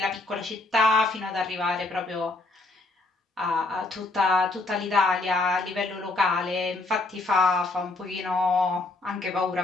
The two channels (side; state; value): right; quieter; 3.0 dB